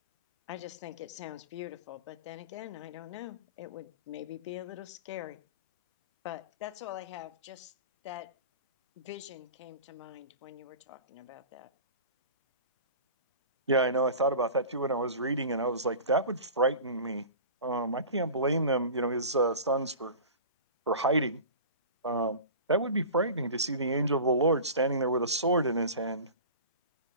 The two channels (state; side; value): inverted; both; correlation -0.36